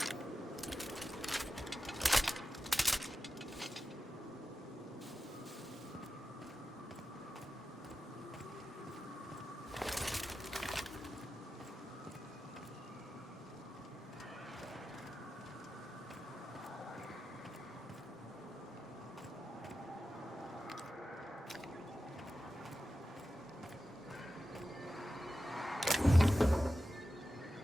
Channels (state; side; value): normal; both; correlation 0.93